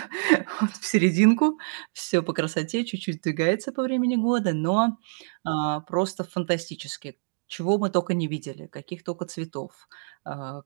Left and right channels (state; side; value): silent; left; digital silence